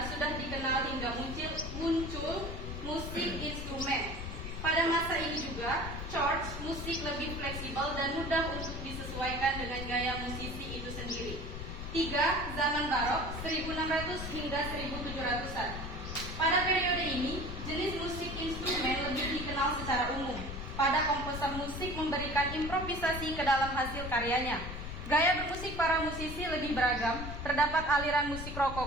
sudah dikenal hingga muncul musik instrumen. Pada masa ini juga, church musik lebih fleksibel dan mudah untuk disesuaikan dengan gaya musisi itu sendiri. 3. Zaman Barok, 1600 hingga 1700-an. Pada periode ini, jenis musik instrumen lebih dikenal secara umum. Pada komposer musik memberikan improvisasi ke dalam hasil karyanya. Gaya bermusik para musisi lebih beragam, terdapat aliran musik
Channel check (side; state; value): left; noise; rumble, 7 dB below the sound